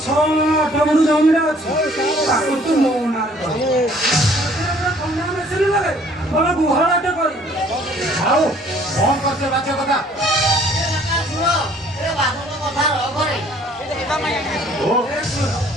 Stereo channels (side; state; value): both; normal; correlation 0.58